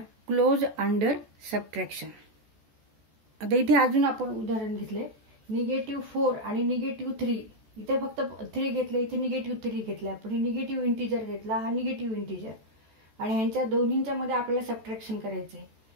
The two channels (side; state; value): left; late; 14 ms